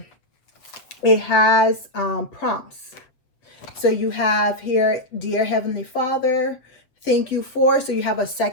it has prompts. So you have here, Dear Heavenly Father, thank you for. So you have a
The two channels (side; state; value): right; late; 7.7 ms